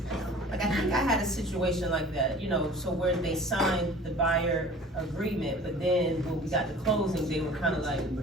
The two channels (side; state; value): both; normal; correlation 0.45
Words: Like, I think I had a situation like that, so where they signed the buyer agreement, but then when we got to closing, they were kind of like,